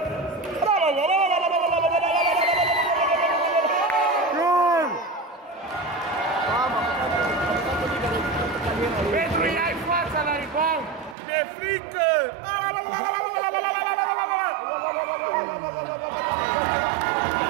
Petru, ia-i fața la rebound! De frică!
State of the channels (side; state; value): left; drops out; at 11.2 s